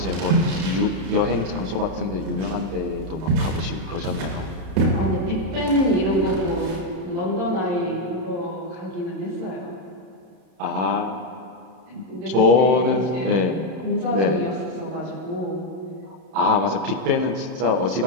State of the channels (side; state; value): left; late; 31 ms